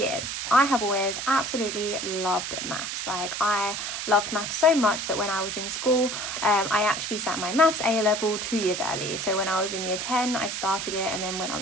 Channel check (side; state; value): right; noise; hiss, 4 dB below the sound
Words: I have always absolutely loved maths. I loved maths so much that when I was in school I actually sat my maths A level 2 years early. So when I was in year 10 I started it, and then when I